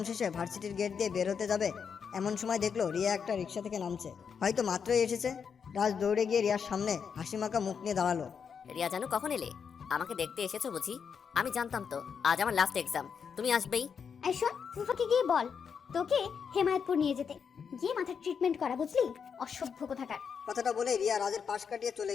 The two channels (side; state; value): right; quieter; 6.6 dB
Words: শেষে ভার্সিটির গেট দিয়ে বের হতে যাবে, এমন সময় দেখলো রিয়া একটা রিক্সা থেকে নামছে। হয়তো মাত্রই এসেছে। রাজ দৌড়ে গিয়ে রিয়ার সামনে হাসিমাখা মুখ নিয়ে দাঁড়ালো। রিয়া জানু, কখন এলে? আমাকে দেখতে এসেছো বুঝি? আমি জানতাম তো আজ আমার লাস্ট এক্সাম, তুমি আসবেই। এই শোন, ফুফাকে গিয়ে বল তোকে হেমায়তপুর নিয়ে যেতে, গিয়ে মাথার ট্রিটমেন্ট করা, বুঝলি? অসভ্য কোথাকার। কথাটা বলে রিয়া রাজের পাশ কাটিয়ে চলে